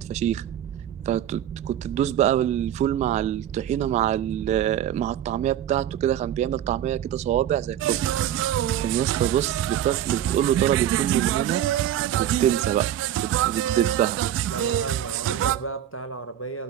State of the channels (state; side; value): quieter; left; 11.0 dB